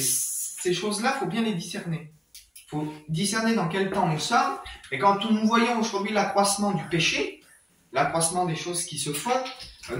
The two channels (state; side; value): identical; both; correlation 1.00